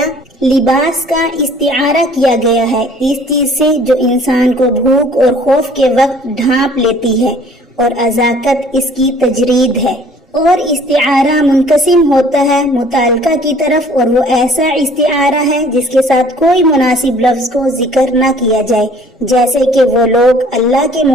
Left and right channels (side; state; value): both; normal; correlation 0.54